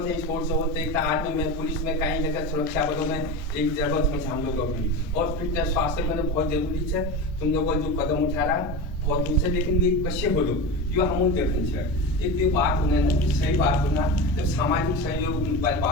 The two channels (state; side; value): normal; both; correlation 0.25